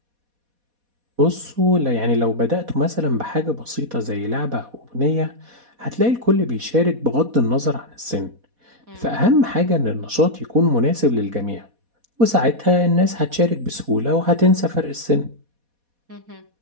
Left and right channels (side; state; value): left; late; 4.1 ms